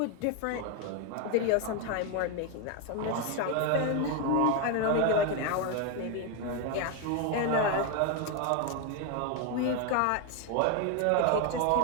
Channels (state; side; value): different; both; correlation 0.01